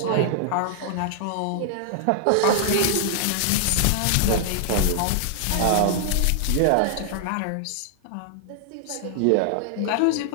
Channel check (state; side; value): different; both; correlation 0.00